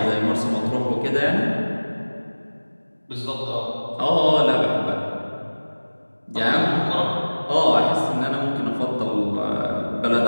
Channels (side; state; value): both; inverted; correlation -1.00